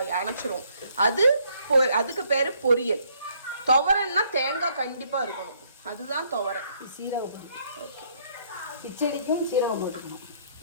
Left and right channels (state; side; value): inverted; both; correlation -0.67